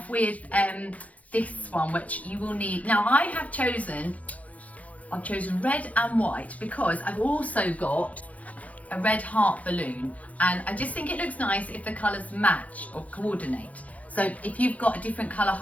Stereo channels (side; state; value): right; late; 0.070 ms